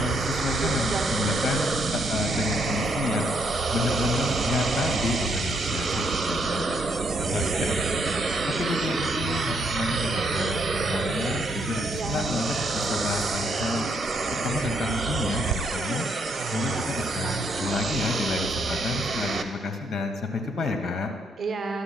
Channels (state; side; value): normal; both; correlation 0.73